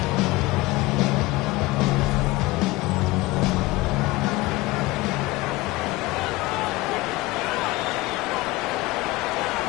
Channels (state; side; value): quieter; right; 20.7 dB